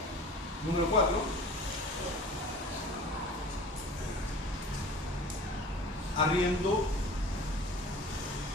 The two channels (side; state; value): both; normal; correlation 0.41